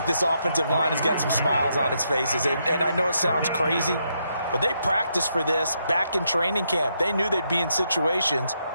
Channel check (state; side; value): inverted; both; correlation -0.79